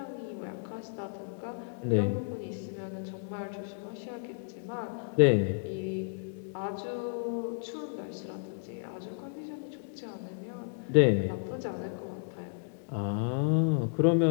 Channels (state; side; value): silent; right; digital silence